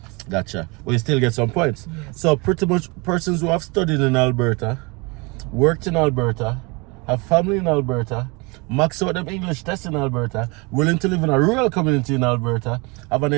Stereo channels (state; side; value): quieter; left; 28.2 dB